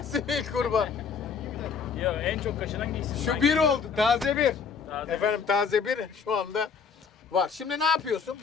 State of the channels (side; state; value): right; quieter; 6.0 dB